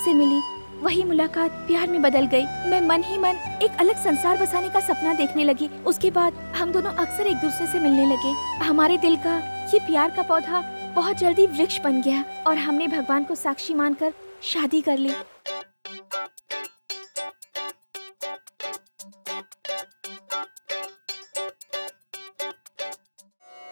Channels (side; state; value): both; inverted; correlation -1.00